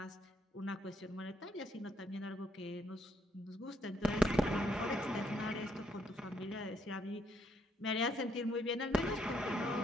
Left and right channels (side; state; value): both; normal; correlation 0.72